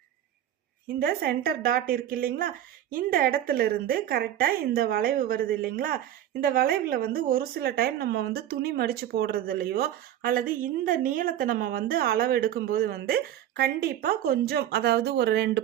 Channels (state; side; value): quieter; left; 11.6 dB